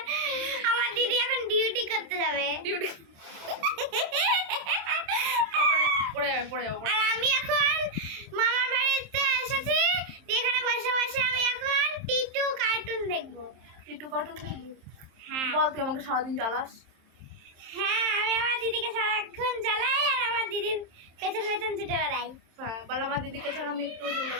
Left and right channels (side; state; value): left; late; 27 ms